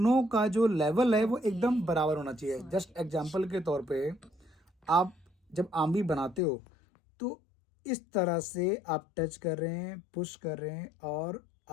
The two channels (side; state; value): right; drops out; at 6.4 s